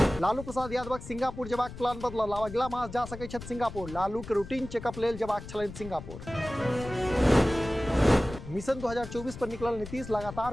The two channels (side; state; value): left; noise; rumble, 12 dB below the sound